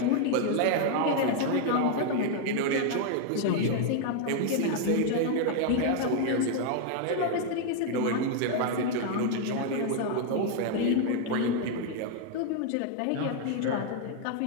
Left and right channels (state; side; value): different; both; correlation 0.00